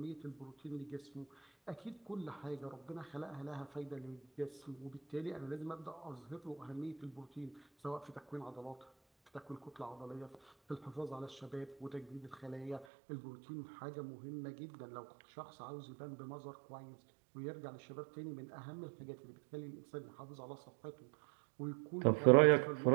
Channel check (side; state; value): left; drops out; at 12.9 s